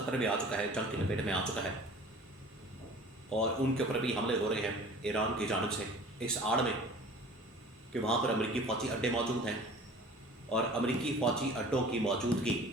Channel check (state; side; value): normal; both; correlation 0.44